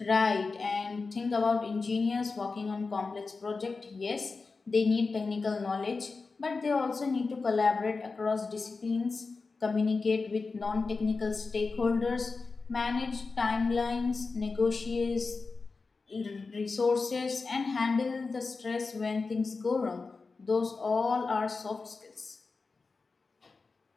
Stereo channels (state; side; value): quieter; right; 4.2 dB